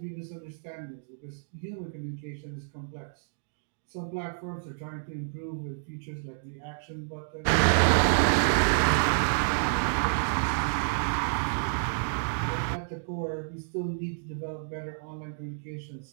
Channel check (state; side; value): silent; left; digital silence